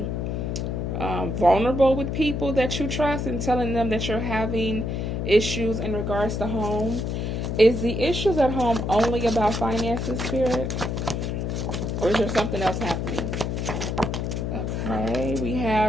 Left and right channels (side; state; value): left; noise; hum, 2 dB below the sound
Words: vulnerable with people that you trust and telling them that you're having issues in regards to home. Is the issues at home only about finances, Spirit? Or is there something else happening? Okay, we